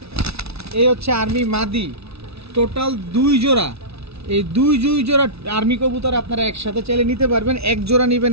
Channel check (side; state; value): left; late; 0.79 ms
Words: এই হচ্ছে আর্মি মাদি। টোটাল 2 জোড়া। এই দুই জোড়া আর্মি কবুতর আপনারা একসাথে চাইলে নিতে পারবেন। এক জোড়া নেবেন